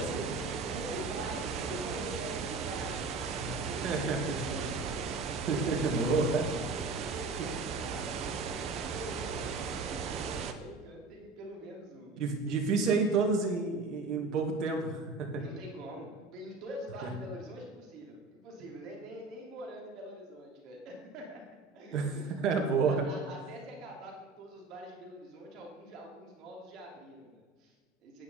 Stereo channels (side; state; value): left; quieter; 3.9 dB